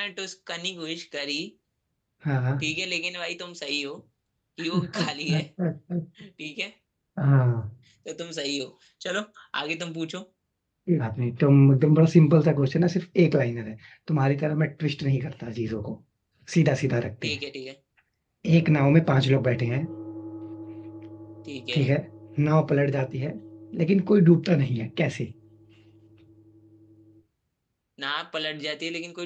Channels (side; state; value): both; identical; correlation 1.00